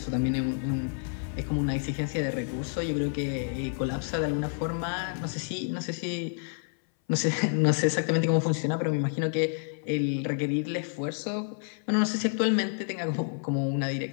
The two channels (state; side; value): silent; right; 59 dB below the other